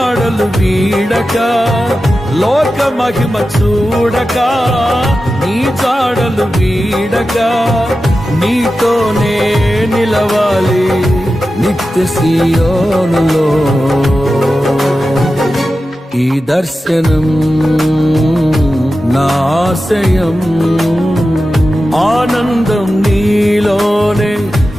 వీడక, లోక మహిమ చూడక నీ జాడలు వీడక, నీతోనే నిలవాలి నిత్య సియోనులో. ఈ దర్శనం నా ఆశయం, ఆనందం నీలోనే,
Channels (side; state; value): both; normal; correlation 0.93